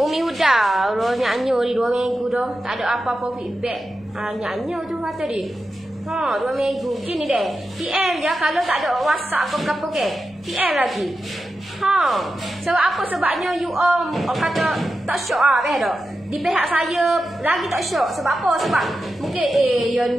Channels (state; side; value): noise; left; rumble, 29 dB below the sound